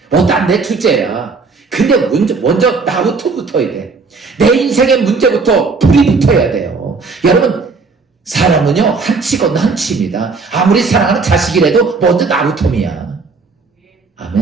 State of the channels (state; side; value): quieter; left; 4.4 dB